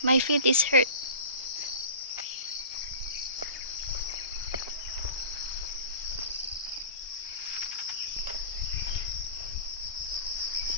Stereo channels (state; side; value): inverted; both; correlation -0.38